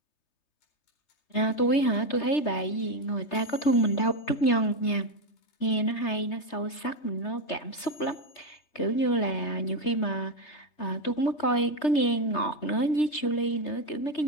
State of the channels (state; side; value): late; right; 3.3 ms